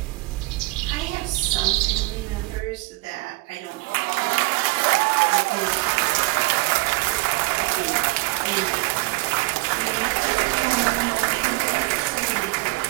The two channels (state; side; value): quieter; left; 24.3 dB